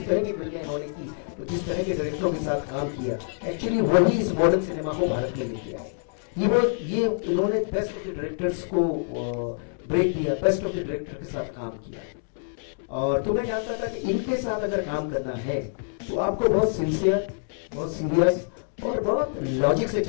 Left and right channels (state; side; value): silent; right; digital silence